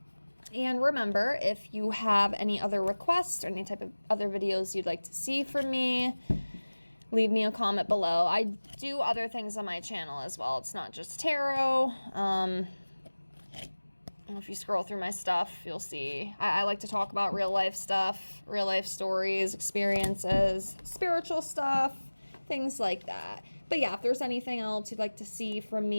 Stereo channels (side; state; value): both; inverted; correlation -1.00